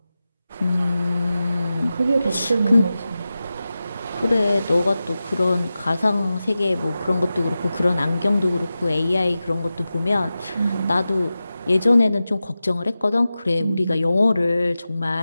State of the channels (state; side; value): inverted; both; correlation -0.94